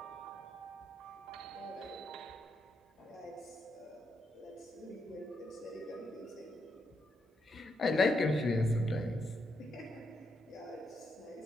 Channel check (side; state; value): both; normal; correlation 0.80